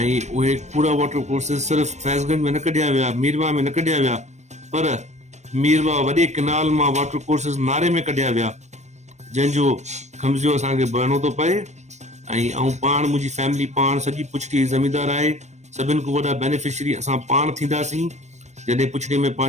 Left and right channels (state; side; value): late; left; 0.34 ms